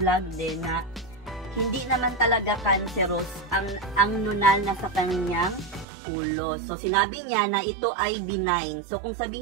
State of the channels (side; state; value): left; drops out; at 5.9 s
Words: din na hindi naman talaga cancerous ang nunal na sa kanyang ulo. So, sinabi niya na ito ay benign. So, kung